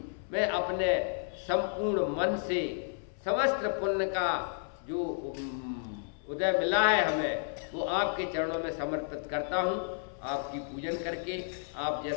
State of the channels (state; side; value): silent; right; 56 dB below the other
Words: मैं अपने संपूर्ण मन से समस्त पुण्य का जो उदय मिला है हमें, वो आपके चरणों में समर्पित करता हूँ। आपकी पूजन करके आप